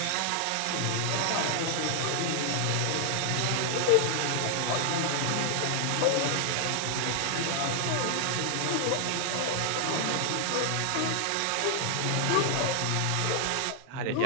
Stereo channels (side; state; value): both; different; correlation 0.00